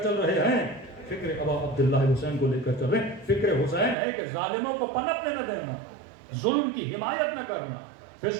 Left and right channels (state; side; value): drops out; left; at 4.0 s